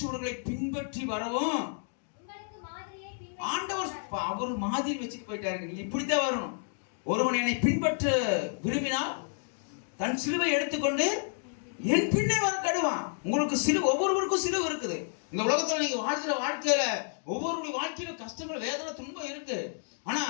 பின்பற்றி வரவும் ஆண்டவர் அவர் மாதிரி வச்சுட்டு போயிட்டாரு. நீங்க இப்படித்தான் வரணும். ஒருவன் என்னை பின்பற்ற விரும்பினால் தன் சிலுவை எடுத்துக்கொண்டு என் பின்னே வர கடுவான். உங்களுக்கு சிலுவை, ஒவ்வொருவருக்கும் சிலுவை இருக்குது. இந்த உலகத்துல நீங்க வாழ்கிற வாழ்க்கையில ஒவ்வொருடைய வாழ்க்கையில கஷ்டங்கள், வேதனை, துன்பம் இருக்கு. ஆனா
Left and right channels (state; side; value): silent; right; 57 dB below the other